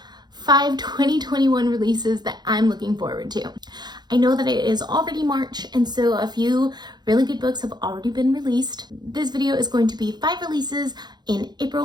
5 2021 releases that I'm looking forward to. I know that it is already March, and so a few really good books have already been released. This video is going to be 5 releases in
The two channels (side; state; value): left; late; 0.21 ms